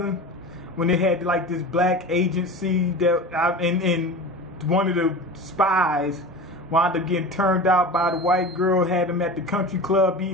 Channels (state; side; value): normal; both; correlation 0.31